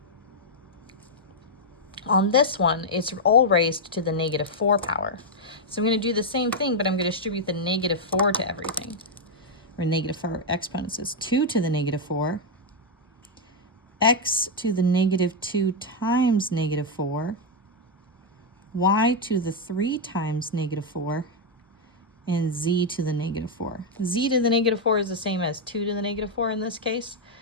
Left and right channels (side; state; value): both; normal; correlation -0.02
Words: On this one, it's all raised to the negative 4 power. So I'm going to do the same thing, but I'm going to distribute the negative 4 to everything. Or negative 4 exponents is 2 to the negative 4, x to the negative 2 times negative 4, y to the 3 times negative 4, and z to the negative 4. Z to the negative 4 is the same as 2 to the negative 4 in this case,